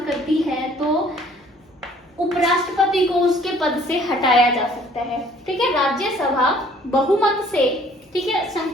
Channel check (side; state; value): both; normal; correlation 0.57